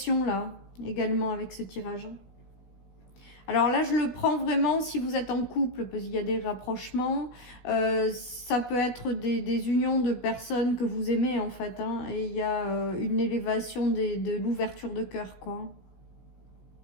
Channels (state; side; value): late; right; 16 ms